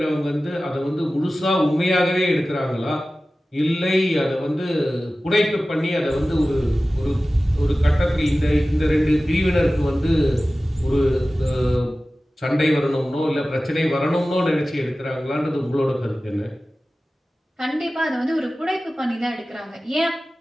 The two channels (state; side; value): normal; both; correlation 0.96